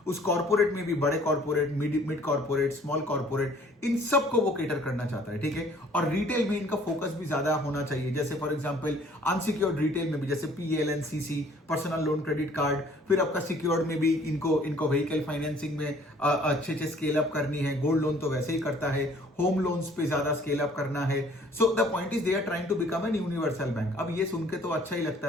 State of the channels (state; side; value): normal; both; correlation 0.56